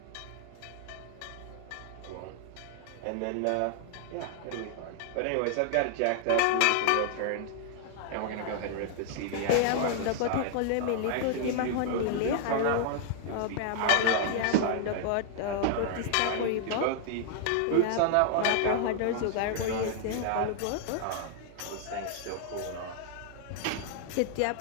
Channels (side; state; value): both; different; correlation 0.00